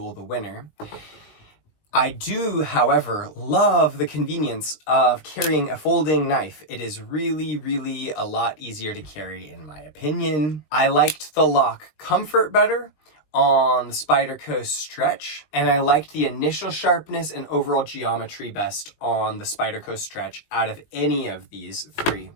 the winner. I do, however, love the convenience of carrying a folding knife. It is really, really a lot easier to carry, in my opinion. I liked the lock comfort better on the Spyderco Stretch, and I liked the initial sharpness and overall geometry best on the Spyderco Stretch out of any of these three.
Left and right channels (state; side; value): late; right; 20 ms